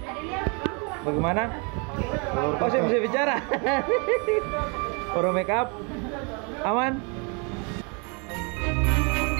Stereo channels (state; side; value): quieter; left; 33.9 dB